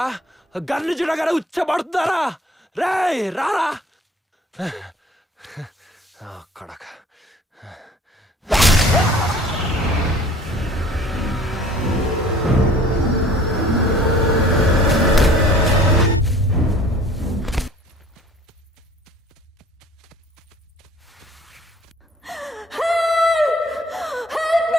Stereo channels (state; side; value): normal; both; correlation 0.51